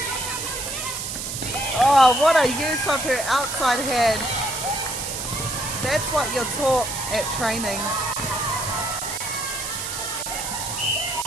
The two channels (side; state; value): right; noise; hiss, 5 dB below the sound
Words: Oh, what a use of her outside hand. That's what you're taught at trainings.